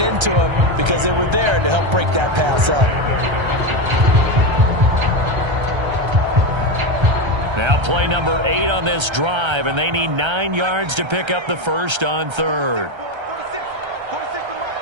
him because they were there to help break that pass up. Now play number 8 on this drive, and they need 9 yards to pick up the first on third. 46 to Mike.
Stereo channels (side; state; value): left; late; 1.3 ms